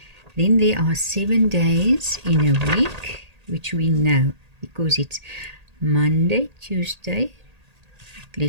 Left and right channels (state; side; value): late; left; 1.8 ms